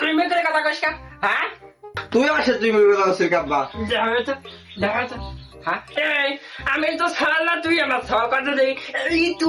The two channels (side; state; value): both; identical; correlation 1.00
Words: তুই মেয়ে করে কথা কইস হ্যাঁ তুই আমার সাথে তুই মিলে যাচ্ছিস আব্বা। যাবে তো হ্যাঁ এই আমি তো ছাড় না তুই আমার ছাওয়া কথা দেই এই